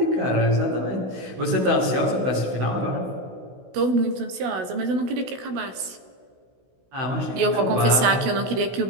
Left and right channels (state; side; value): late; left; 16 ms